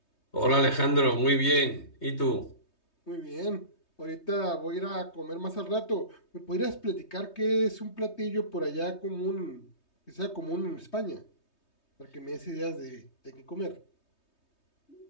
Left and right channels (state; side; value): late; right; 3.2 ms